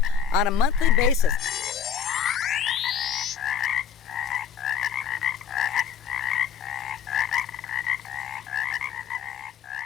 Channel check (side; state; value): right; quieter; 7.6 dB